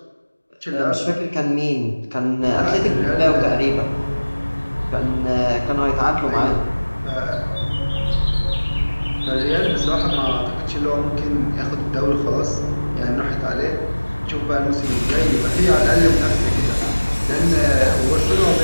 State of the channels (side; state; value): both; inverted; correlation -1.00